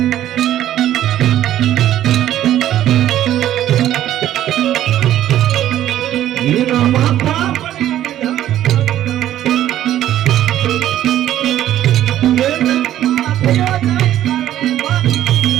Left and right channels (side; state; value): left; quieter; 12.4 dB